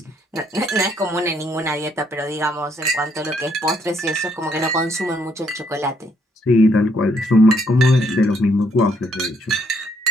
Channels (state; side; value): normal; both; correlation 0.70